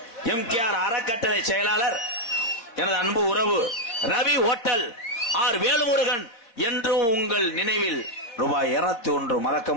எம்கேஆர் அறக்கட்டளை செயலாளர் எனது அன்பு உறவு ரவி ஹோட்டல் ஆர் வேலுமுருகன் என்றும் உங்கள் நினைவில் ரூபாய் 201 மறக்க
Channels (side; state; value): right; late; 4.2 ms